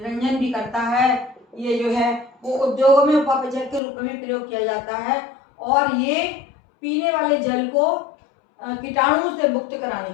भी करता है, ये जो है वो उद्योगों में उपापचयक के रूप में भी प्रयोग किया जाता है, और ये पीने वाले जल को कीटाणुओं से मुक्त कराने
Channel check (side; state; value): right; drops out; at 3.8 s